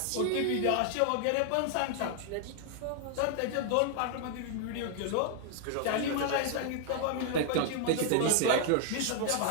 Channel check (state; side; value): different; both; correlation 0.00